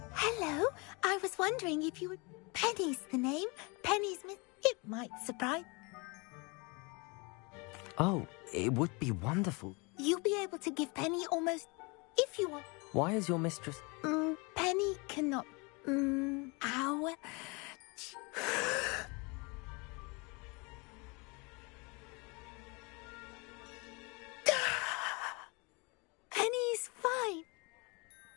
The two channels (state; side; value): quieter; right; 29.1 dB